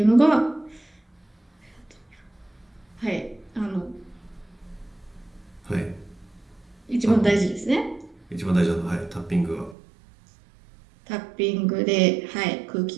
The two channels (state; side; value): drops out; left; at 9.8 s